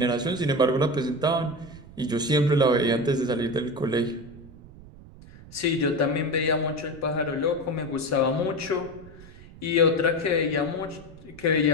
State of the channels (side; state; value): right; noise; rumble, 19 dB below the sound